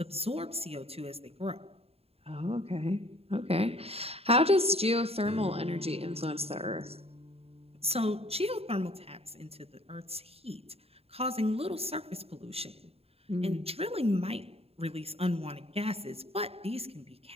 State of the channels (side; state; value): left; late; 0.29 ms